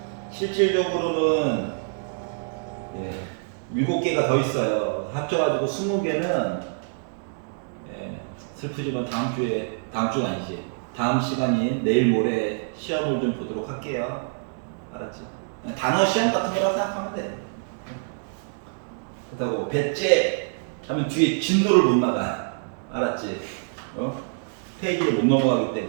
실질적으로는 7개가 더 있어요. 합쳐가지고 20개는 슬프지만 다음 주가 아니지. 다음 시간인 내일 모레 시험을 좀 보도록 할게요. 알았지? 단어 시험 같은 거라고 생각하면 돼. 그렇다고 배째, 하면 뒤에 진도를 못 나가. 알았지? 페이지를 못 넘어가기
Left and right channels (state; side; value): silent; left; digital silence